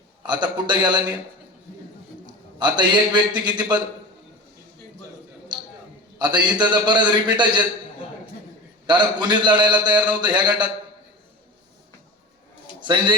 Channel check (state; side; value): normal; both; correlation 0.30